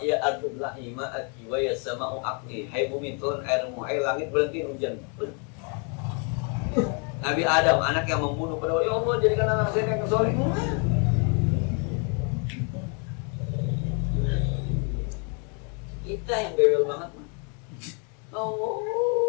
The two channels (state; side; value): quieter; right; 37.9 dB